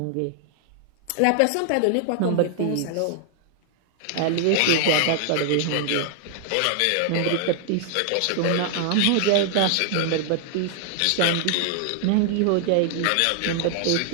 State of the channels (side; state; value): both; different; correlation 0.00